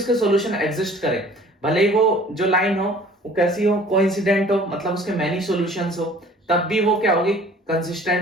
सॉल्यूशन एग्जिस्ट करे, भले ही वो जो लाइन हो वो कैसी हो, कोइंसिडेंट हो, मतलब उसके मैनी सॉल्यूशंस हो, तब भी वो क्या होगी,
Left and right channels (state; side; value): normal; both; correlation 0.50